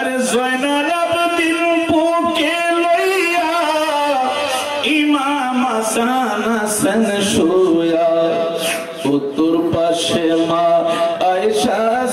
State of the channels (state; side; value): identical; both; correlation 1.00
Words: জয়নাল আবদিন বুকে লইয়া ইমাম হাসান হাসান শুয়া উত্তর পাশে মা আয়েশা